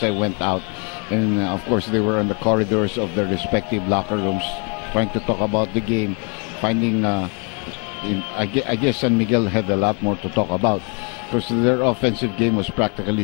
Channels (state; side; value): quieter; right; 35.4 dB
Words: I went out, and of course they were on the corridors of their respective locker rooms, trying to talk about the game, finding. I guess San Miguel had a lot more to talk about, because their offensive game was